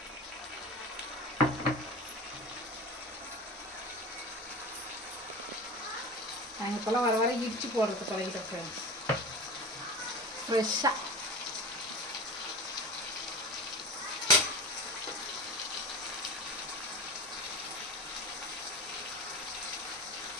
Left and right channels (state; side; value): normal; both; correlation 0.31